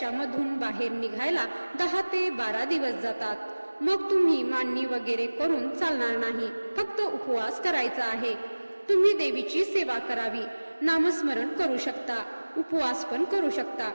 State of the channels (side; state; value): both; inverted; correlation -1.00